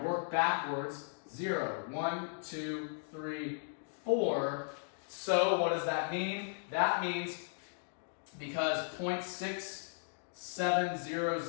backwards. 0, 1, 2, 3, 4. So what does that mean? That means because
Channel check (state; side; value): silent; right; digital silence